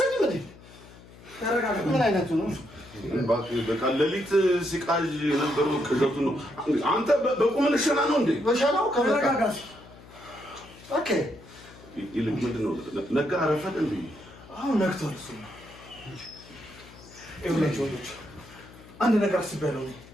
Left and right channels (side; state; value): left; noise; hum, 21 dB below the sound